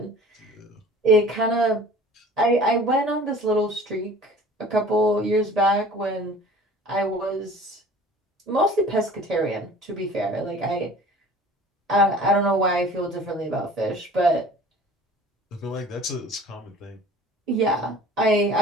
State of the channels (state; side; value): normal; both; correlation 0.46